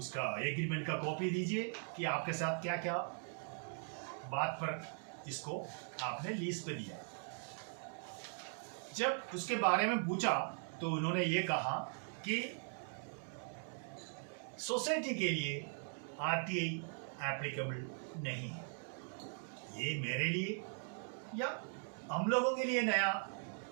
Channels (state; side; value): silent; left; 51 dB below the other